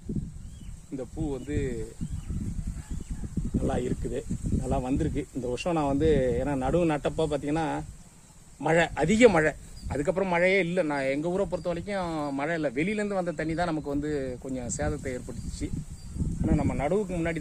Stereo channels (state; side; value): identical; both; correlation 1.00